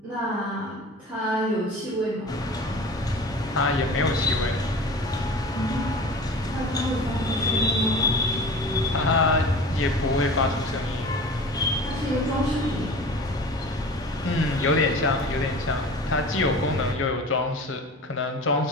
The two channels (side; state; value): both; normal; correlation 0.38